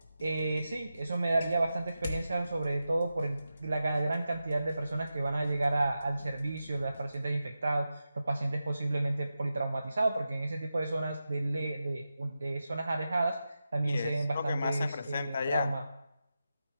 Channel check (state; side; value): inverted; both; correlation -0.91